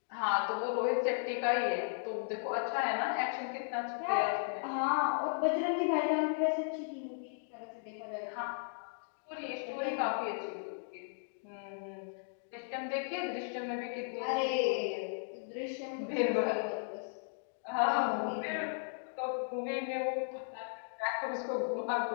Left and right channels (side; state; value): right; silent; digital silence